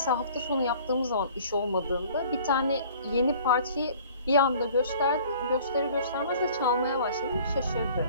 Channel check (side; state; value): both; inverted; correlation -0.51